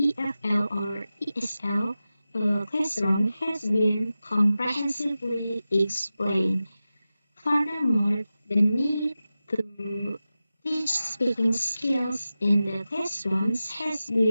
or ESL classroom has been comprehensively explained. Furthermore, the need to teach speaking skills in the classrooms has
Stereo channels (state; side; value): inverted; both; correlation -0.94